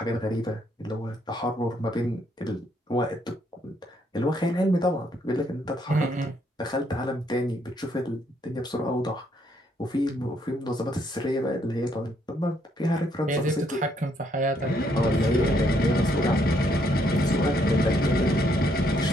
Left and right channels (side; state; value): both; normal; correlation 0.71